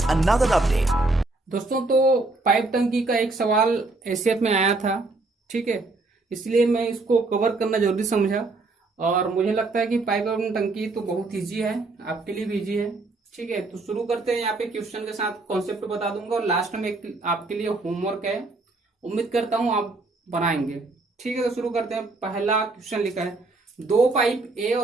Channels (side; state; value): left; quieter; 3.3 dB